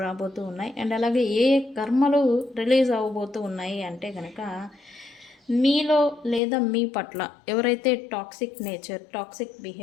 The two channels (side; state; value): right; drops out; at 6.4 s